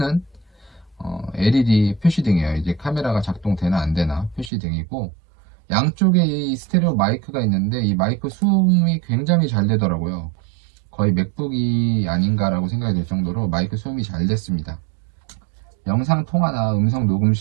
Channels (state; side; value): drops out; left; at 4.5 s